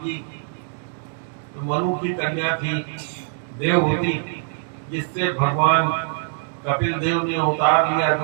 जी। तो मनु की कन्या थी देवहूति, जिससे भगवान कपिल देव ने अवतार लिया,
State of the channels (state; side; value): silent; left; digital silence